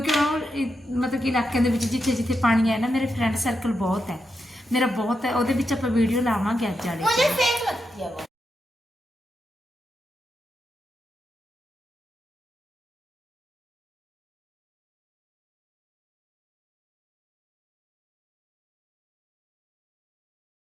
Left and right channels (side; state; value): both; normal; correlation 0.85